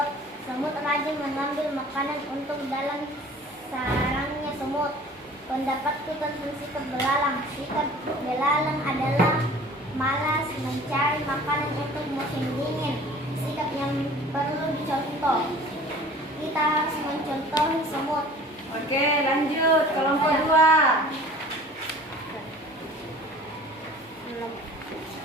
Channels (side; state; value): both; normal; correlation 0.46